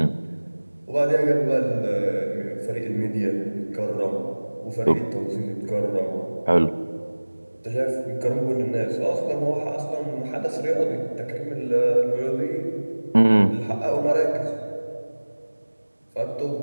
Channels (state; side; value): inverted; both; correlation -1.00